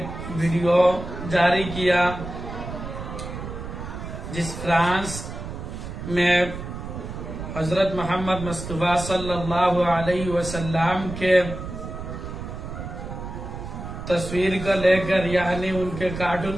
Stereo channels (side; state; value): right; noise; rumble, 8 dB below the sound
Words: ویڈیو جاری کیا جس فرانس میں حضرت محمد مصطفیٰ صلی اللہ علیہ وسلم کے تصویر کو لے کر یعنی ان کے